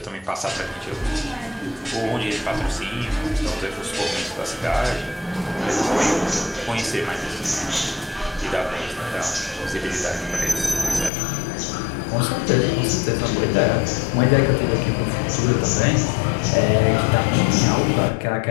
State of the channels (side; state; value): right; drops out; at 11.1 s